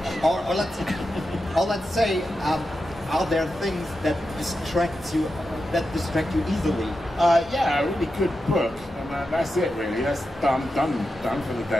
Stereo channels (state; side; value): normal; both; correlation 0.89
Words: Or let's say, are there things that distract you easily? Yeah, a really good book, and that's it really. That's done for the